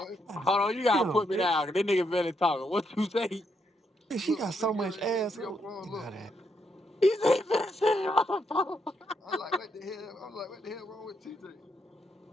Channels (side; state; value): both; normal; correlation 0.78